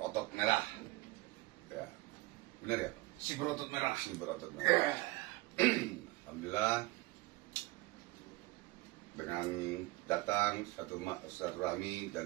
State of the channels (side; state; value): left; quieter; 20.7 dB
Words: merah, ya benar ya? Si berotot merah. Si berotot merah. Alhamdulillah, dengan datang satu silaturahmi